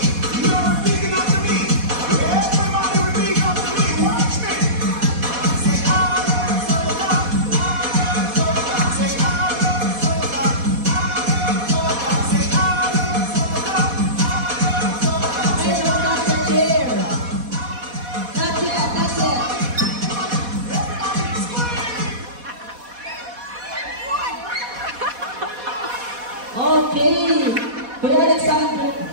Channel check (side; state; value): left; late; 4.1 ms